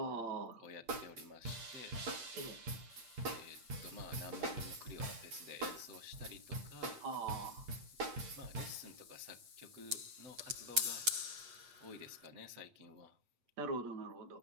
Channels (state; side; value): late; left; 8.3 ms